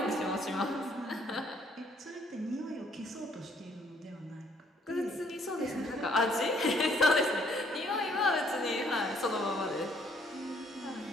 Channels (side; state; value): both; normal; correlation 0.65